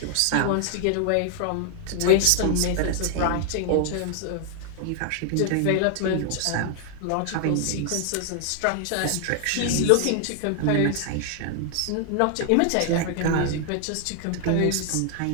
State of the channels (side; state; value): both; different; correlation 0.00